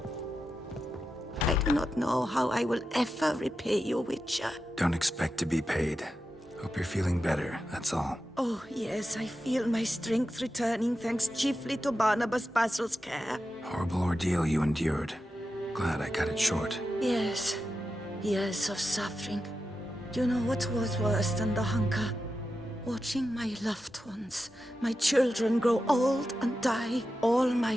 I do not know how I will ever repay you, Witcher. Don't expect to be paid. Hope you're feeling better, that's all. Oh, yes, I feel my strength returning thanks chiefly to Barnabas Basil's care. Horrible ordeal you endured. Glad I cut it short. Yes, years of suffering. Do you know what was worse than the hunger? Watching my loved ones, my children grow old and die. All my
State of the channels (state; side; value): normal; both; correlation 0.90